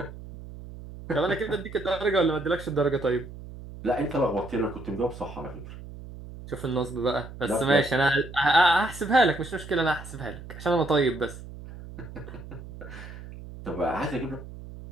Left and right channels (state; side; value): noise; right; hum, 14 dB below the sound